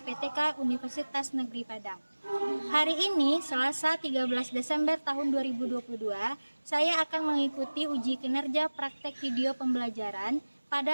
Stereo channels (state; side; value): inverted; both; correlation -1.00